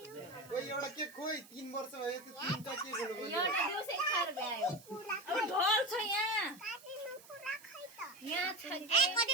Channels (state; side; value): noise; right; hiss, 21 dB below the sound